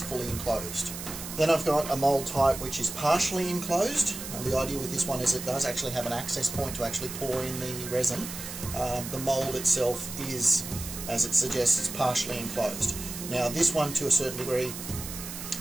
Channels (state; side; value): noise; right; hiss, 9 dB below the sound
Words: fully enclosed. Then I've got a mould type which is partially enclosed. And the idea with this one is it does actually have an access point to actually pour in the resin. The mould itself is, as it suggests, partially enclosed. Now this one, to a certain degree,